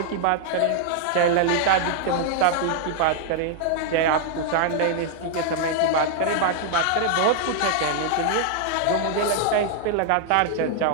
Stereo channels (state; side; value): different; both; correlation 0.00